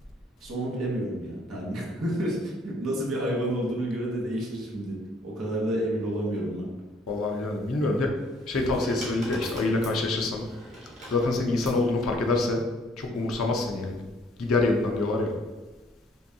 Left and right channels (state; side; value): normal; both; correlation 0.62